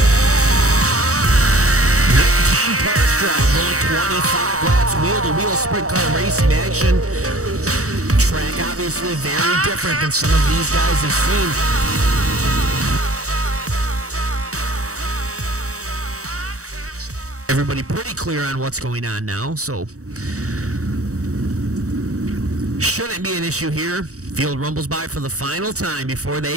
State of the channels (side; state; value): left; late; 0.65 ms